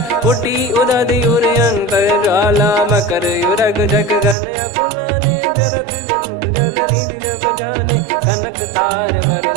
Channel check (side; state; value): left; drops out; at 4.4 s